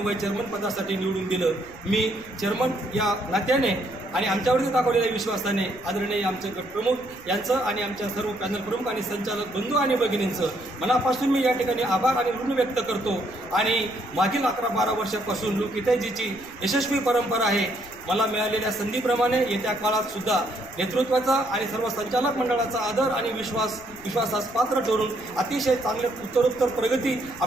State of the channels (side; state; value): left; noise; rumble, 22 dB below the sound